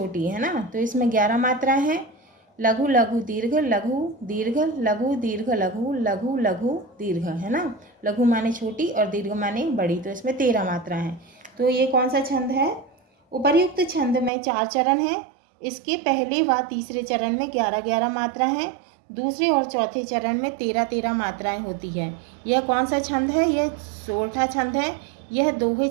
है ना। तो इसमें 11 मात्रा है। लघु लघु दीर्घ लघु दीर्घ लघु दीर्घ लघु लघु लघु दीर्घ, है ना। लघु माने छोटी और दीर्घ माने बड़ी, तो इसमें 13 मात्रा है। तो ये कौन सा छंद है? उपर्युक्त छंद में 4 चरण हैं। इसके पहले व तीसरे चरण में 11 मात्रा हैं। दूसरे और चौथे चरण में 13 मात्राएं होती है। यह कौन सा छंद है? यह सोरठा छंद है। यह दोहे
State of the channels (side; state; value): left; drops out; at 14.3 s